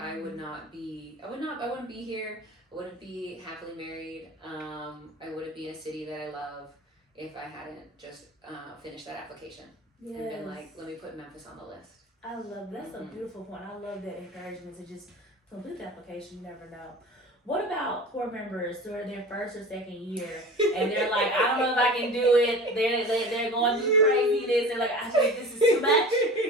wouldn't be here. I wouldn't be happily married. I wouldn't be in a city that I love if I hadn't just finished that application and been like, let me put Memphis on the list. I love that's a beautiful point. I love that encouragement to just complete the application. You never know. What about core members who are their first or second year and they're like, I don't know if I can do it. They're going through craziness. They're like, I think this is too much.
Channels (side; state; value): both; normal; correlation 0.37